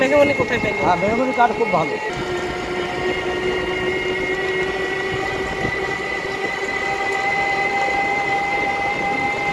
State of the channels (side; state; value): both; identical; correlation 1.00